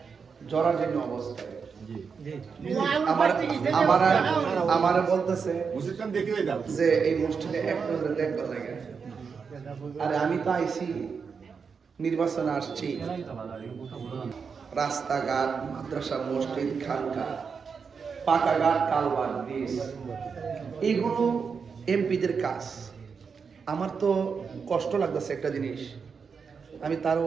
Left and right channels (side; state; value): left; quieter; 5.8 dB